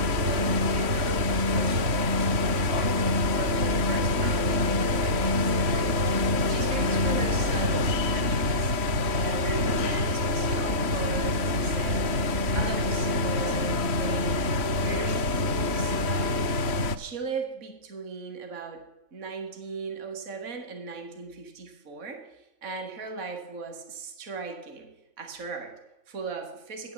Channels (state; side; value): late; left; 3.5 ms